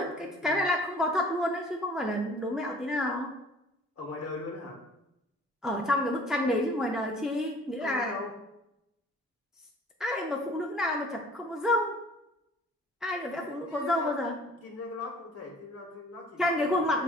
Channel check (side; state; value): both; normal; correlation 0.51